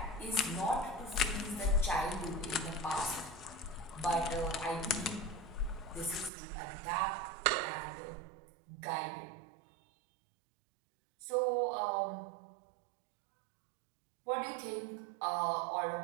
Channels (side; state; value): left; drops out; at 6.3 s